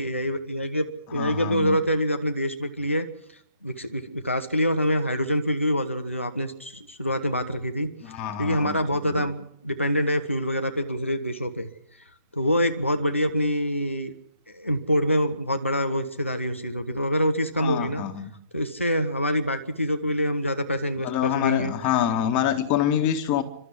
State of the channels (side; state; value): both; inverted; correlation -0.62